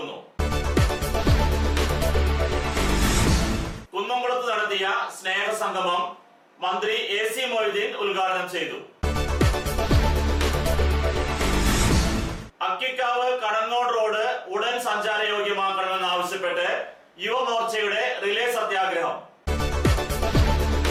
കുന്നംകുളത്ത് നടത്തിയ സ്നേഹസംഗമം മന്ത്രി AC മൊയ്തീൻ ഉദ്ഘാടനം ചെയ്തു. അക്കിക്കാവ് കടങ്ങോട് റോഡ് ഉടൻ സഞ്ചാരയോഗ്യമാക്കണമെന്നാവശ്യപ്പെട്ട് യുവമോർച്ചയുടെ റിലേ സത്യാഗ്രഹം.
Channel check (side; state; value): both; identical; correlation 1.00